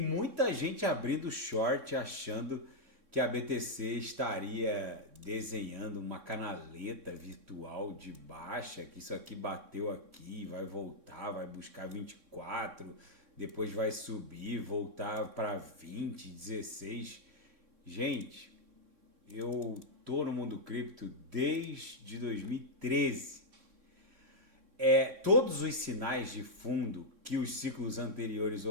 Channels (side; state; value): left; late; 3.6 ms